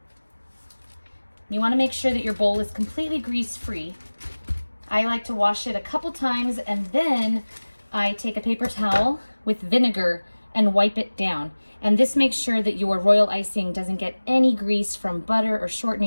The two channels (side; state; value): both; inverted; correlation -1.00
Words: You want to make sure that your bowl is completely grease-free. I like to wash it a couple times, and then I take a paper towel with vinegar and wipe it down. And this makes sure that your royal icing doesn't get any grease from butter or